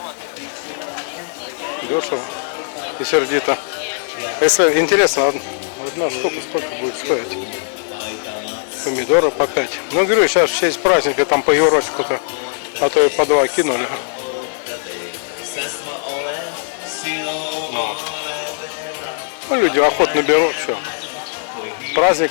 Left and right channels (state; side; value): silent; right; digital silence